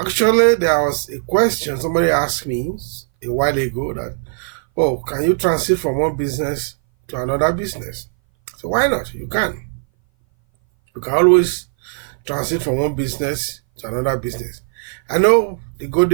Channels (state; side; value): silent; left; 60 dB below the other